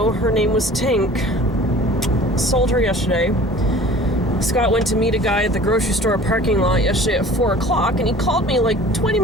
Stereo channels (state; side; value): normal; both; correlation 0.46